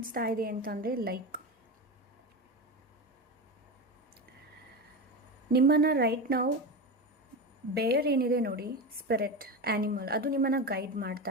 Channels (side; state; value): both; normal; correlation 0.21